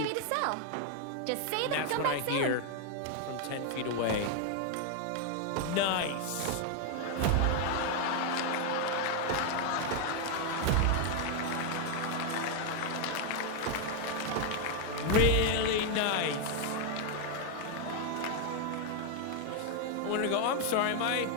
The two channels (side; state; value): both; different; correlation 0.00